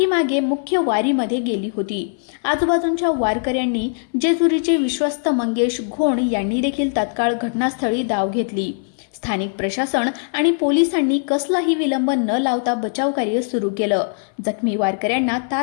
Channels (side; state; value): right; silent; 60 dB below the other